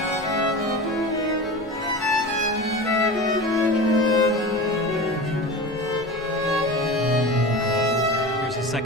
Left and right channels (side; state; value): both; normal; correlation 0.30